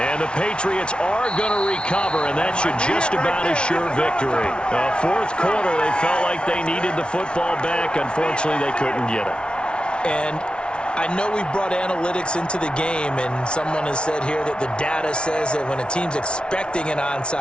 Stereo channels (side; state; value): right; late; 0.057 ms